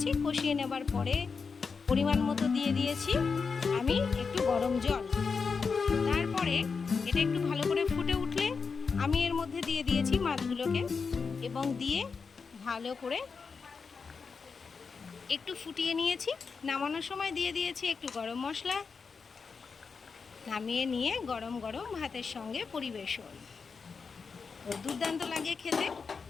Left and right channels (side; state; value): right; quieter; 5.2 dB